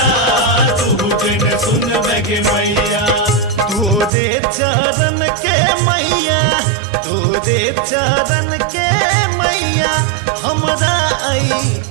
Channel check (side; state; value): left; drops out; at 4.1 s